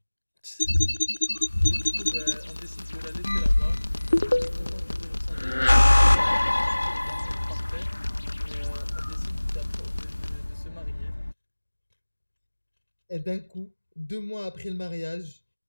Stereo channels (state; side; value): inverted; both; correlation -1.00